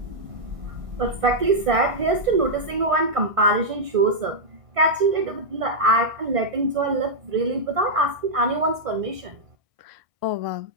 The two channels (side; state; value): left; late; 1.6 ms